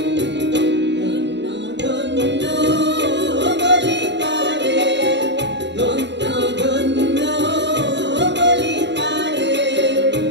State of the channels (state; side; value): late; left; 0.52 ms